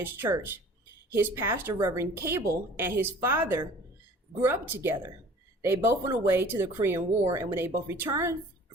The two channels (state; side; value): normal; both; correlation 0.48